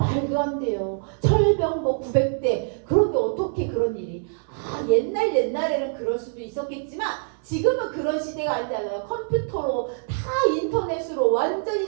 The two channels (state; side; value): silent; left; 62 dB below the other